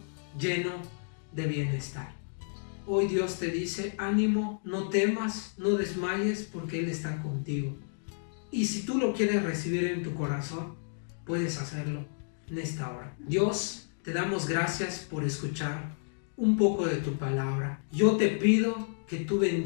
lleno de bienestar. Hoy Dios te dice, ánimo, no temas, no desmayes, porque Él está contigo. Y si tú lo quieres recibir en tu corazón, puedes hacerlo en esta hora. Dios, te damos gracias por escuchar un poco de tu palabra. Yo te pido que tú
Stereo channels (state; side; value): silent; right; digital silence